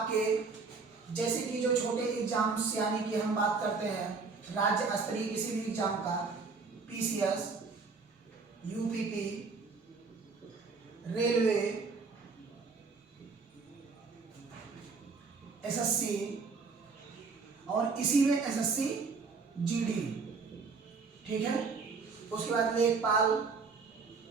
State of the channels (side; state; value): left; quieter; 4.6 dB